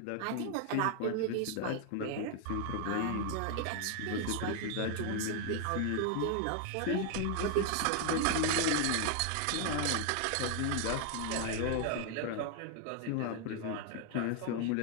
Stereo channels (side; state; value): both; different; correlation 0.00